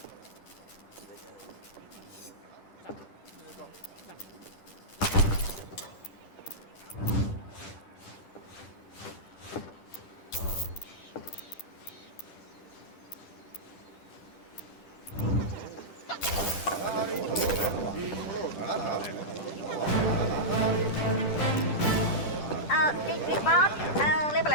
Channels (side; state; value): right; late; 10 ms